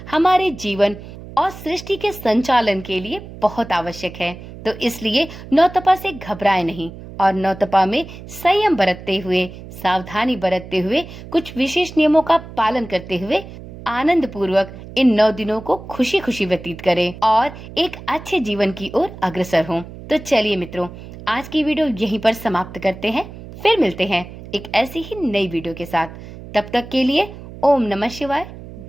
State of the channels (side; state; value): right; noise; hum, 14 dB below the sound